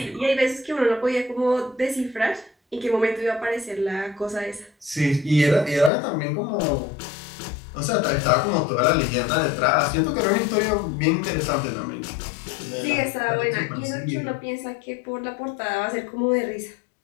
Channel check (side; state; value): right; drops out; at 5.9 s